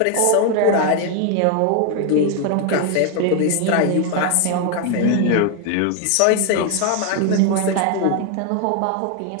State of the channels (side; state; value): both; different; correlation 0.01